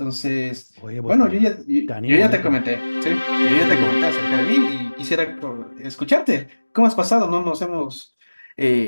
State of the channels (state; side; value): inverted; both; correlation -1.00